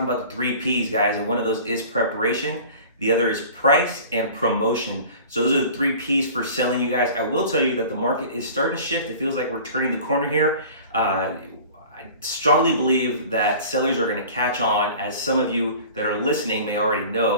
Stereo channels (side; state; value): both; inverted; correlation -0.43